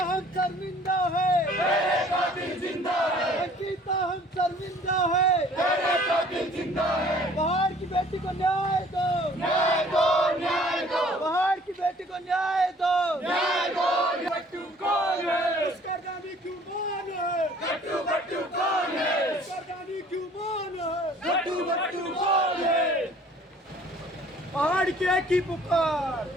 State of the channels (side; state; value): both; normal; correlation 0.54